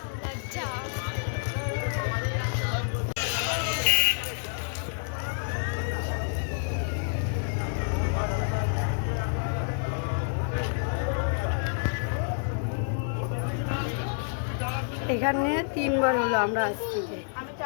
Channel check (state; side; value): silent; right; 59 dB below the other